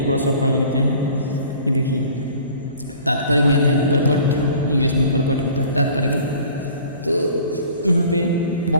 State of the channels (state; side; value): inverted; both; correlation -0.48